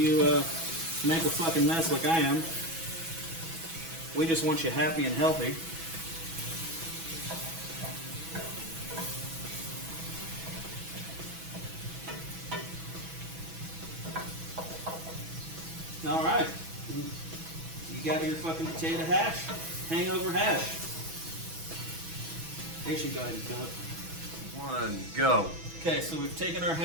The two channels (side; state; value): left; late; 6.1 ms